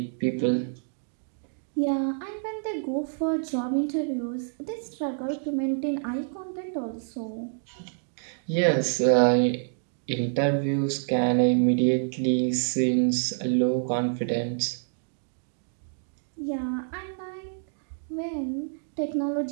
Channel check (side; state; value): left; silent; digital silence